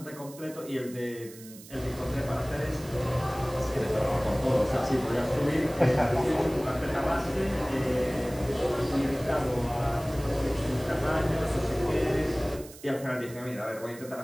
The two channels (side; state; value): right; noise; hiss, 18 dB below the sound